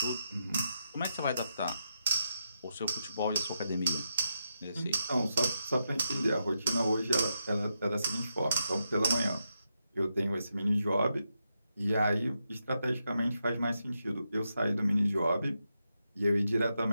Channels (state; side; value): inverted; both; correlation -0.84